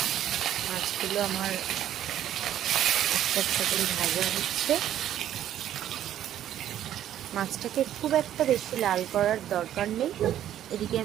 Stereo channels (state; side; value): quieter; left; 11.4 dB